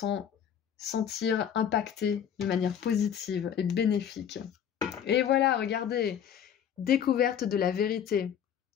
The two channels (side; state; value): right; quieter; 8.8 dB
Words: sentir impactées de manière positive et bénéfique. Et voilà, regardez, découverte de la vérité.